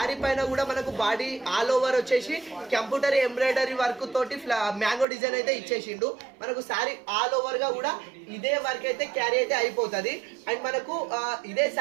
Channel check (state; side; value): drops out; left; at 5.1 s